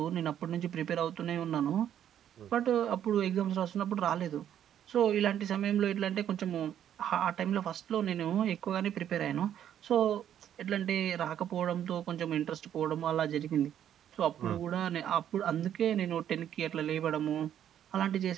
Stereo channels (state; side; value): quieter; left; 10.2 dB